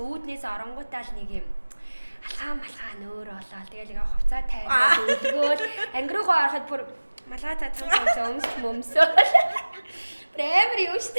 үүднээс оронгуудаа л нэг юм алхаа малхаа нөөр болоо. Тэгэл ингээ хувцас тайлах өлгөөл ангируугаа ороход бүр малгайтай цам өмсөө. Амар юу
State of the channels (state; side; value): inverted; both; correlation -1.00